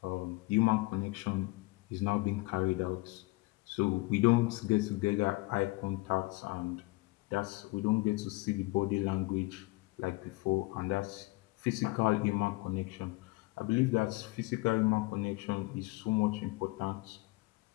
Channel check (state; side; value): quieter; right; 23.3 dB